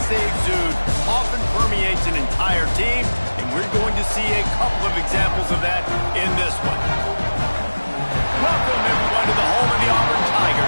they exude often permeates an entire team, and we're going to see a couple of examples of that in this one. Welcome, everyone, to the home of the Auburn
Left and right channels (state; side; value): inverted; both; correlation -1.00